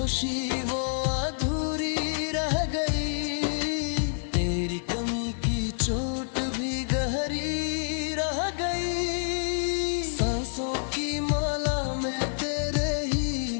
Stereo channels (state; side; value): silent; right; digital silence